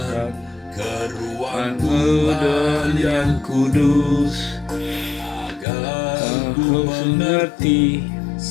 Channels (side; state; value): right; drops out; at 5.7 s